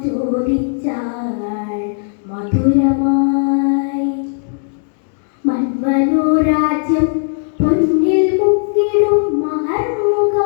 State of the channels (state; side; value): silent; right; digital silence